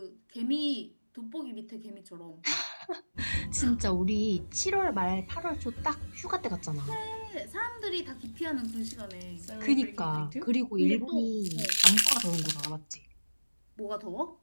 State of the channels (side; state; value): both; inverted; correlation -1.00